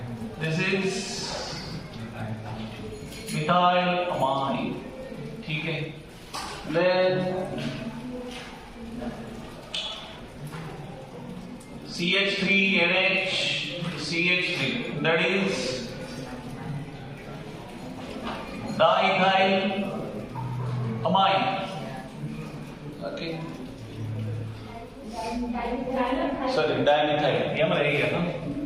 This is methyl amine. ठीक है, then CH3NH CH3, that is diethyl amine. Okay, sorry, dimethyl, ये हमारा रहेगा ना,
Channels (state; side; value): identical; both; correlation 1.00